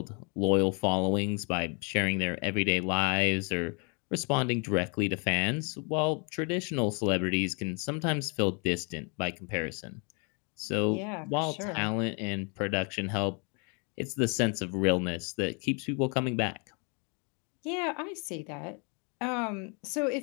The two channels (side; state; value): right; quieter; 35.7 dB